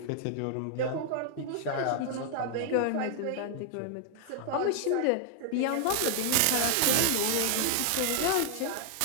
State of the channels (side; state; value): both; different; correlation 0.00